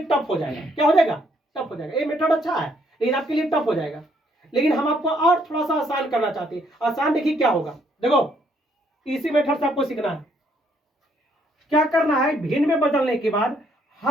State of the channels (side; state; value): both; normal; correlation 0.69